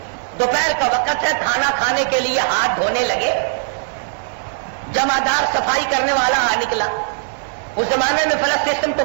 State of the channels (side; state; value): left; silent; digital silence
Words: دوپہر کا وقت ہے، کھانا کھانے کے لیے ہاتھ دھونے لگے، جمعدار صفائی کرنے والا آ نکلا۔ اس زمانے میں فلش سسٹم تو